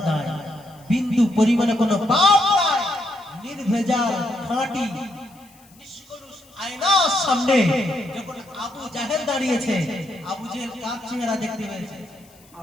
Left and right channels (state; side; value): noise; left; hiss, 28 dB below the sound